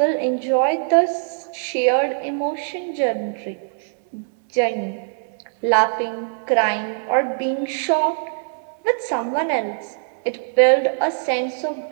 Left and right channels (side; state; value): left; silent; digital silence